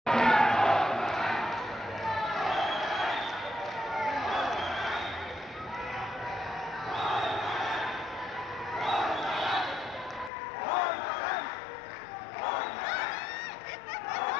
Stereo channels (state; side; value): drops out; right; at 10.3 s